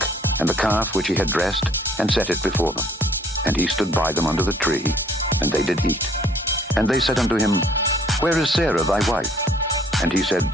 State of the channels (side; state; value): both; normal; correlation 0.59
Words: and the calf which he had dressed, and set it before them. And he stood by them under the tree, and they did eat. And they said unto him, Where is Sarah thy wife? And he said,